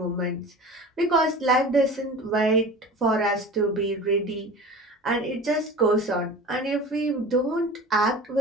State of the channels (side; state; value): both; normal; correlation 0.37